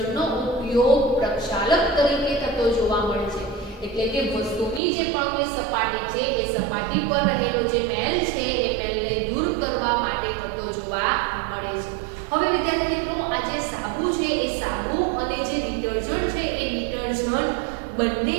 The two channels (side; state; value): left; drops out; at 4.8 s